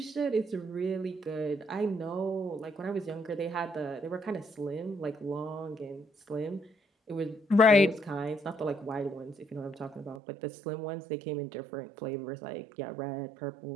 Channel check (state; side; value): drops out; left; at 10.2 s